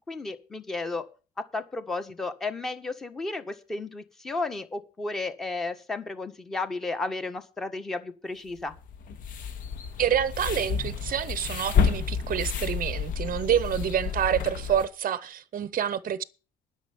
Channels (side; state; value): both; normal; correlation 0.32